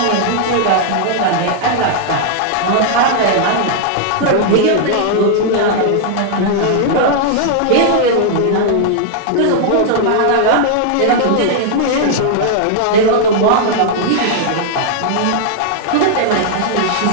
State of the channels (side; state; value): both; different; correlation -0.01